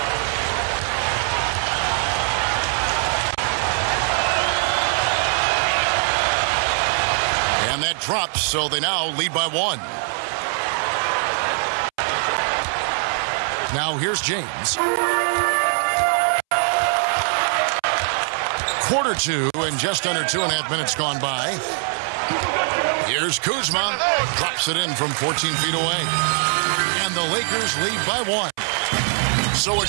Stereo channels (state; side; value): silent; left; 64 dB below the other